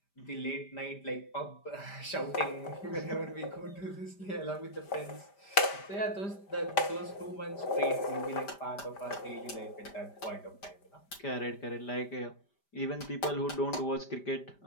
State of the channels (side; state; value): right; late; 5.1 ms